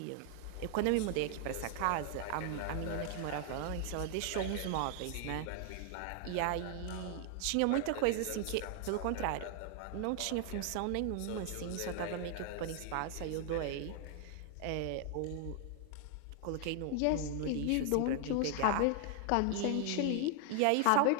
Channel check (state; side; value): different; both; correlation 0.00